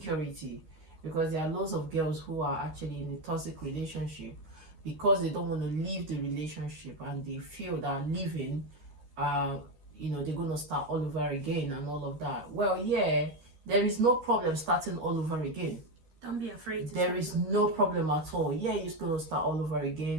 because there are lots of girls who are actually in a toxic relationship because they don't want to leave the relationship and they feel that leaving they're going to start all over again and all of that. Well, yeah, there is no problem starting all over again. Don't be afraid. There is no problem at all. Yeah, you're going to start all over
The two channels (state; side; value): late; left; 13 ms